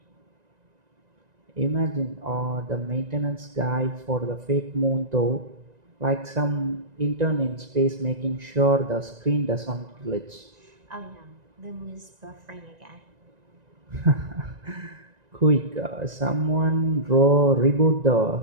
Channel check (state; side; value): late; left; 1.9 ms